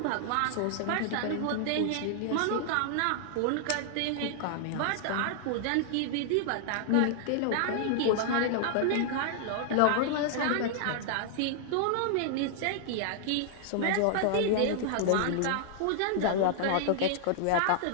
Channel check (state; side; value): different; both; correlation -0.01